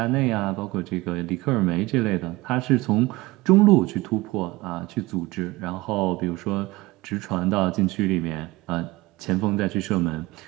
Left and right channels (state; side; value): quieter; left; 21.1 dB